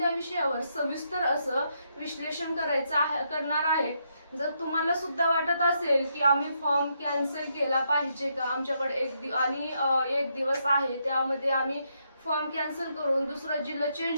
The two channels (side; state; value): both; inverted; correlation -0.78